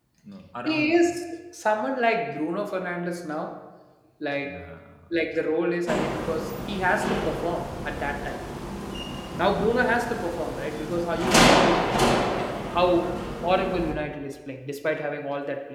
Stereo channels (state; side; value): identical; both; correlation 1.00